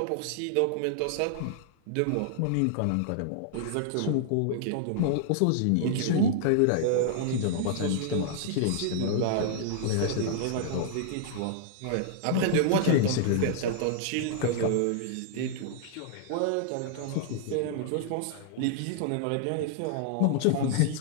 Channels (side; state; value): both; different; correlation -0.01